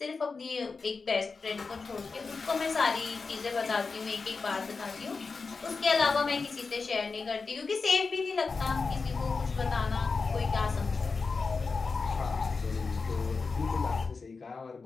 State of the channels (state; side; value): quieter; right; 4.5 dB